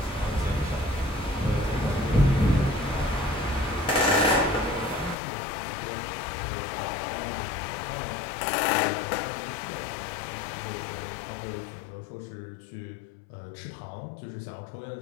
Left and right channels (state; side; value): drops out; right; at 5.2 s